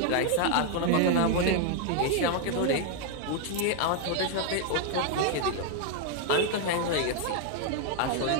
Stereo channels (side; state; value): both; different; correlation 0.00